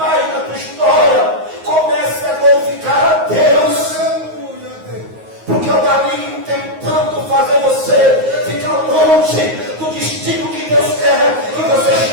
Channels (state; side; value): late; left; 9.4 ms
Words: na tua história, comece a glorificar a Deus. Porque o maligno tentando fazer você ficar longe do destino que Deus quer que você